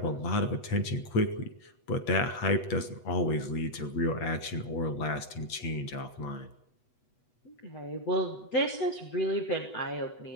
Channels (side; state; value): right; late; 8.2 ms